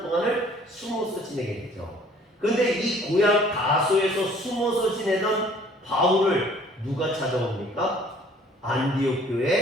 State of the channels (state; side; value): normal; both; correlation 0.55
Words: 동안을 숨어서 지내게 되죠. 그런데 이 고향 다소에서 숨어서 지내던 바울을 누가 찾아옵니까? 안디옥